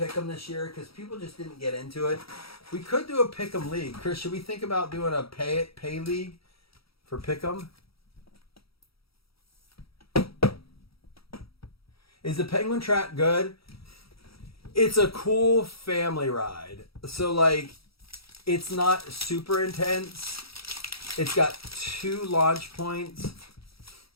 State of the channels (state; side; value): late; right; 0.76 ms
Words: this year because people just didn't get into it. We could do a Pick'em league. Chris, should we think about doing a pay league for Pick'em? Is the Penguin Track good? It's a cool family ride. So, it's not super intense. It's got 2 launch points.